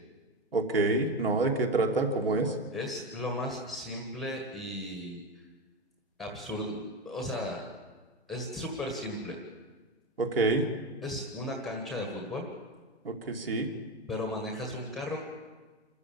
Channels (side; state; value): both; normal; correlation 0.17